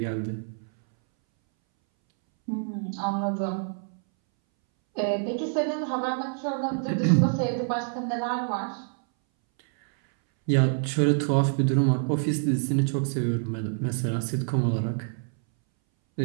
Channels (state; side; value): silent; left; 60 dB below the other